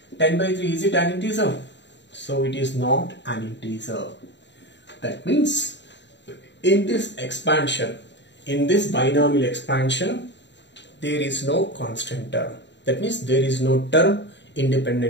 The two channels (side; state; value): right; late; 0.52 ms